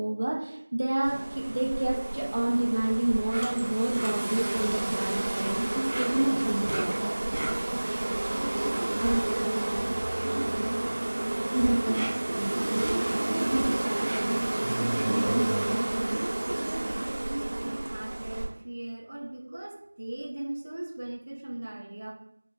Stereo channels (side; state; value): both; inverted; correlation -1.00